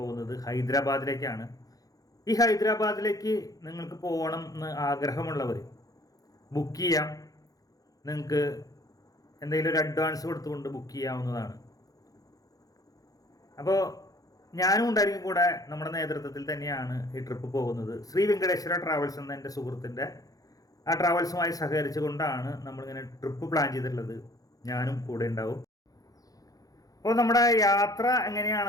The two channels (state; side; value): late; right; 0.17 ms